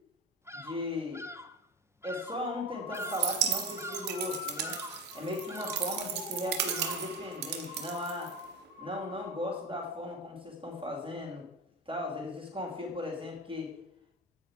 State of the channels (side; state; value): both; normal; correlation 0.23